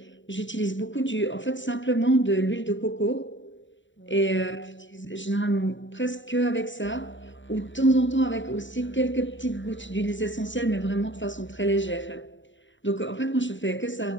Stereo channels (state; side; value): late; right; 0.54 ms